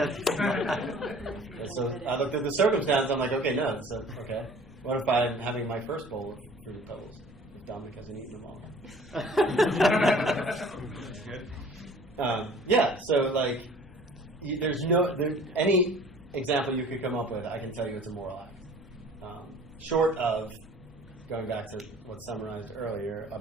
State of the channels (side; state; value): both; normal; correlation 0.49